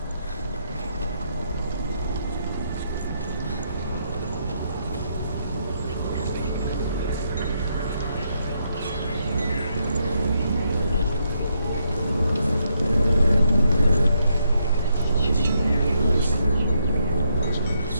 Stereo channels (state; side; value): inverted; both; correlation -0.77